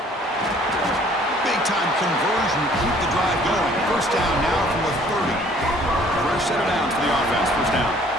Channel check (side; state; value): both; normal; correlation 0.57